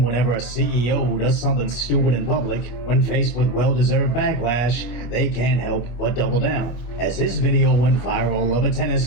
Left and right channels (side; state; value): right; late; 25 ms